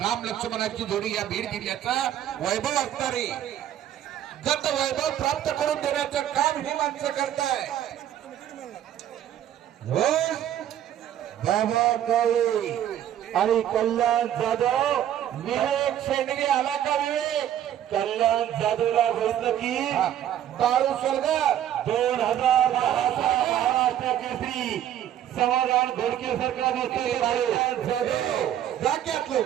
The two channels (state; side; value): quieter; left; 11.0 dB